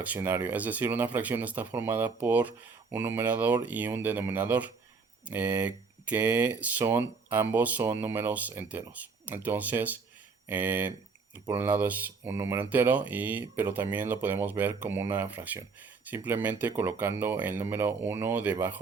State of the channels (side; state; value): left; quieter; 4.7 dB